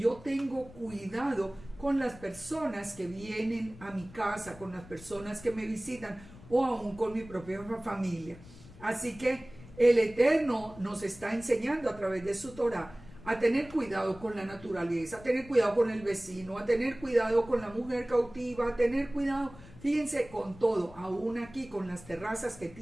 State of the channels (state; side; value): noise; left; rumble, 19 dB below the sound